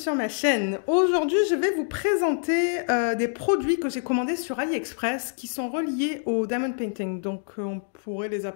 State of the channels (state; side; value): silent; right; digital silence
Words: sur ma chaîne. Aujourd'hui, je vais vous présenter des produits que j'ai commandés sur AliExpress qui sont reliés au diamond painting. Donc, on pourrait les